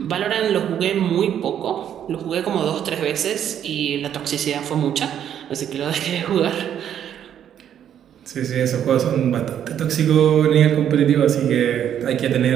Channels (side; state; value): left; quieter; 9.7 dB